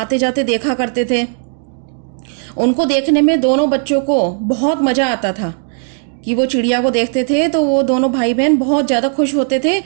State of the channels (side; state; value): left; silent; 58 dB below the other